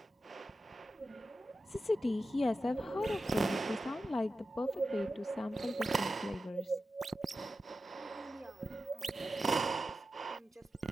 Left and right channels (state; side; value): normal; both; correlation 0.92